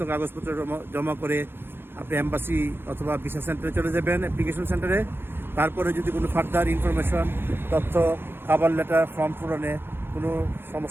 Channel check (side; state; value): left; late; 0.10 ms